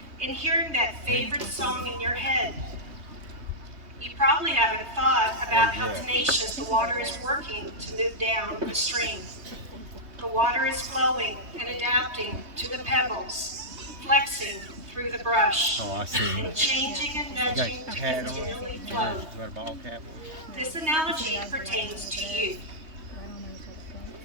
and hearing that favorite song in your head. You probably haven't thought about how tenacious the water is working to move down the stream. The water is flowing and adapting to the pebbles, flexing through the brush, and changing and nudging to continually flow. This analogy pertains to you.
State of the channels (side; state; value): left; late; 3.2 ms